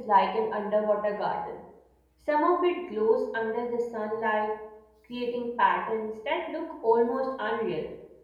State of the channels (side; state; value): both; identical; correlation 1.00